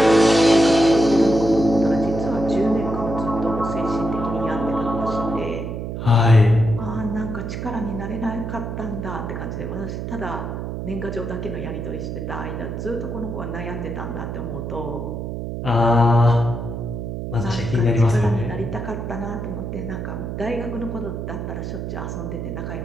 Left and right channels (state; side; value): noise; right; hum, 5 dB below the sound